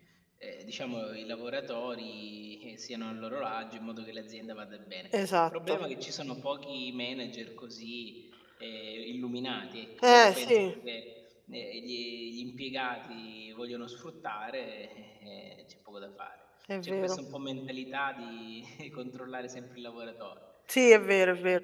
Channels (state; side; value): identical; both; correlation 1.00